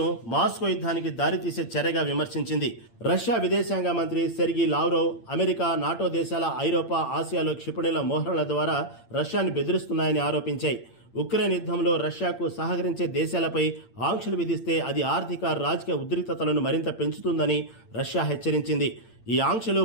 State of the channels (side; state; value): right; late; 8.8 ms